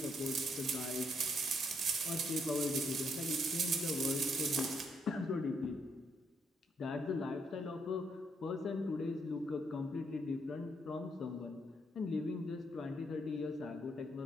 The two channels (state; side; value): normal; both; correlation 0.74